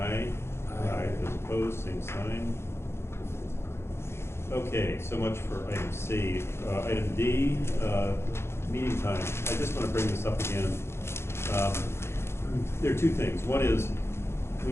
aye. Aye. Those opposed, same sign. Okay, so much for item C. Item D, meeting time. I just wanna bring this up again. There are two things. One is,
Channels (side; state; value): right; late; 0.12 ms